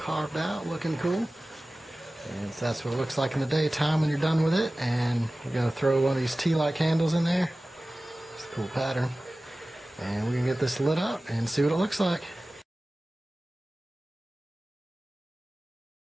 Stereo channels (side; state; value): both; normal; correlation 0.97